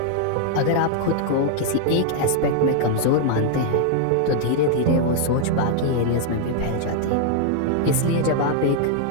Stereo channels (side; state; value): both; different; correlation -0.01